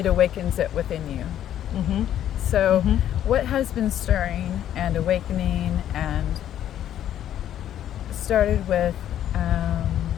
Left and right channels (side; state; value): right; quieter; 11.0 dB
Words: awakens it within you. So what has been stirring and awakening and started with